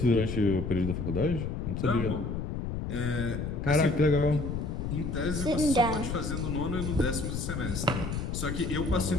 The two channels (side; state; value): left; noise; rumble, 3 dB below the sound